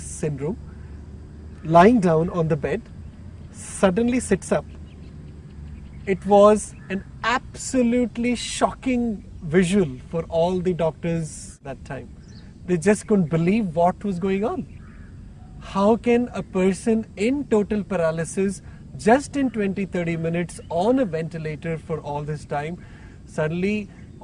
lying down on the bed, suddenly sits up. It was an absolutely shocking visual for all the doctors that time. They just couldn't believe what was going on. How can a person in total paralysis, just in 20-30 minutes on a ventilator for all this time, suddenly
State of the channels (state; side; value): identical; both; correlation 1.00